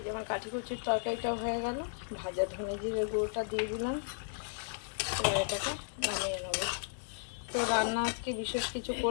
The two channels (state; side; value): silent; right; digital silence